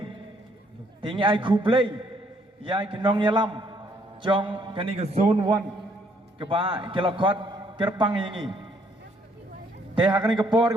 tinggi ai ku play ya kinong yalam Jong kani ke zone 1 ke ba kila kot kerpang yangi te hakani ke por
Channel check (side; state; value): both; normal; correlation 0.68